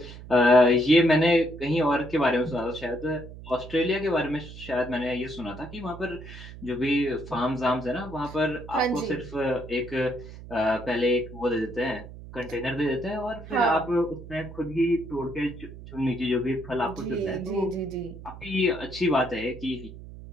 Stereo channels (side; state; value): right; noise; hum, 15 dB below the sound